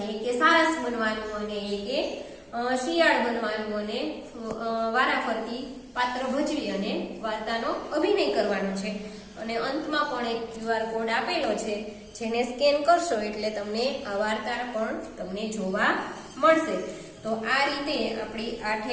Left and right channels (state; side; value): identical; both; correlation 1.00